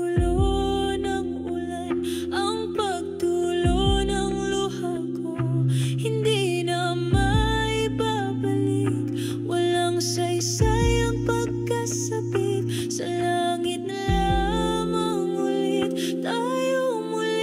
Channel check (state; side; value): identical; both; correlation 1.00